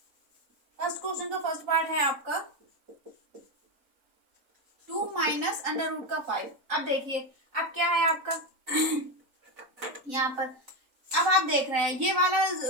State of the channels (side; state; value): left; late; 3.9 ms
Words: फर्स्ट क्वेश्चन का फर्स्ट पार्ट है आपका 2 माइनस अंडर रूट का 5। अब देखिए अब क्या है आपका यहाँ पर, अब आप देख रहे हैं ये वाला